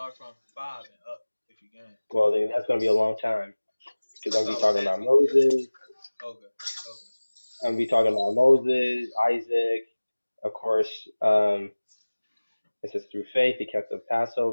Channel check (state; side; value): inverted; both; correlation -1.00